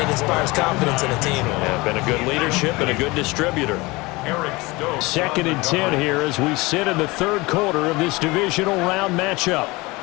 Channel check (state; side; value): quieter; right; 23.0 dB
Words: inspires confidence in a team. Yeah, been a good leadership and a good distributor. 2nd and 10 here as we sit in the third quarter of this divisional round matchup.